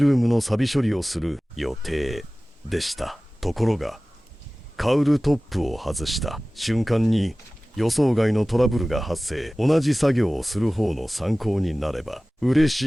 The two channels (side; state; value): both; normal; correlation 0.98